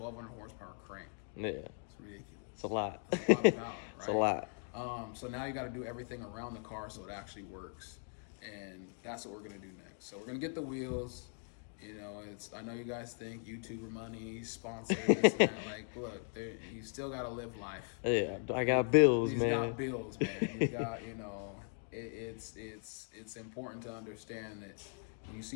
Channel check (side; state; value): right; silent; 52 dB below the other